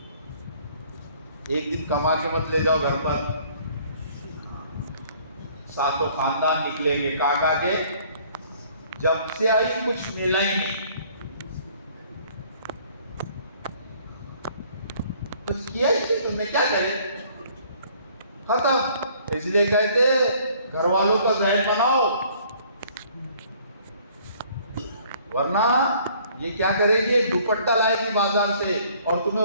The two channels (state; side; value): inverted; both; correlation -0.58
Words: ایک دن کما کے مت لے جاؤ گھر پر, ساتوں خاندان نکلیں گے. کاکا کے جب سے آئی کچھ ملا ہی نہیں, کچھ کیا ہی نہیں, تم نے کیا کرے, ختم. اس لیے کہتے گھر والوں کا ذہن بناؤ, ورنہ یہ کیا کرے گی, دوپٹہ لائے گی بازار سے, اور تمہیں